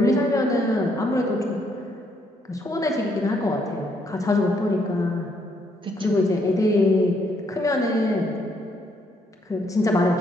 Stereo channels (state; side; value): normal; both; correlation 0.72